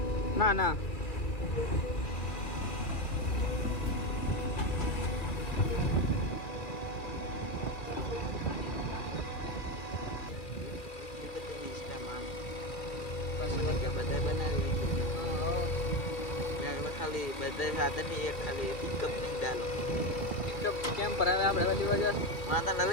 ના ના બધા બનાવી ખાલી બધા સાધન ની એક ખાલી પિકઅપ નહીં ચાલો પિકઅપ કેમ પર હવે આપણે બધી વજહ માતા લઈ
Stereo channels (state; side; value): late; right; 2.4 ms